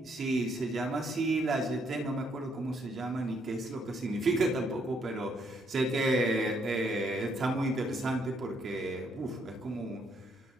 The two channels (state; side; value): normal; both; correlation 0.71